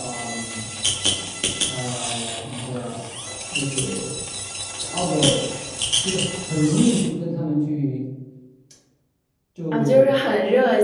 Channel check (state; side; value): identical; both; correlation 1.00